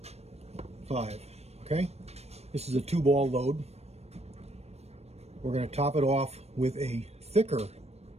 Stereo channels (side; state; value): left; late; 0.31 ms